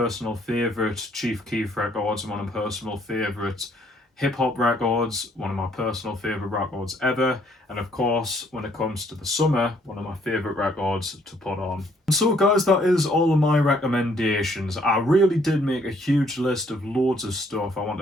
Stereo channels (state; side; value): normal; both; correlation 0.65